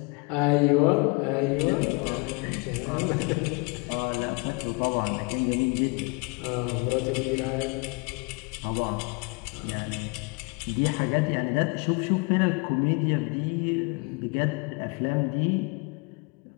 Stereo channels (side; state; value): right; quieter; 30.6 dB